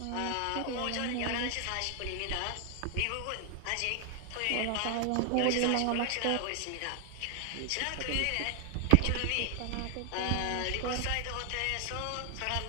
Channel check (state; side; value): different; both; correlation 0.00